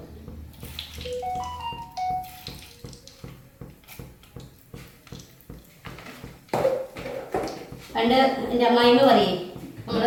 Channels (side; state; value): both; identical; correlation 1.00